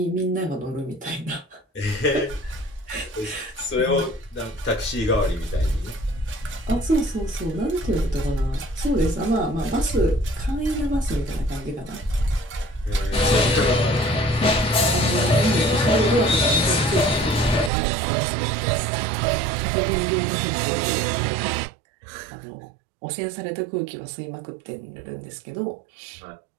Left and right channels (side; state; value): left; drops out; at 17.7 s